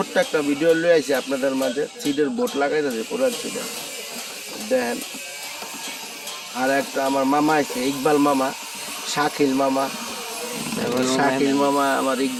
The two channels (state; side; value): identical; both; correlation 1.00